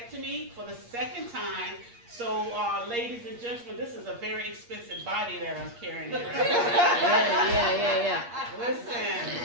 for the second time. So, ladies and gentlemen, this is a very expensive body that I'm carrying around. Yeah. Listen,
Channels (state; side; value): late; left; 8.5 ms